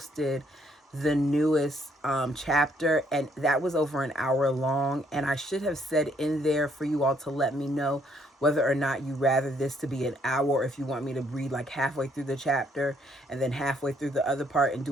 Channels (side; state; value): both; normal; correlation 0.68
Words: the newest chapter, and that was over an hour long, and I should have said in there for you all to let me know whether or not you rather this to be an hour, or if you want me to read like halfway through the chapter and then halfway through the other part and